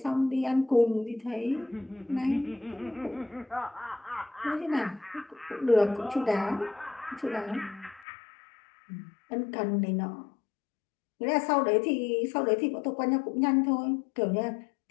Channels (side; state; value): right; drops out; at 8.1 s